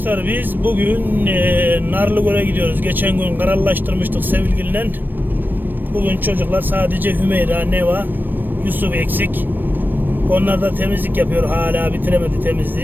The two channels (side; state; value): left; late; 0.093 ms